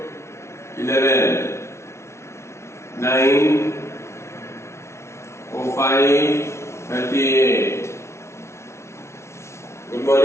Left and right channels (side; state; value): right; late; 0.13 ms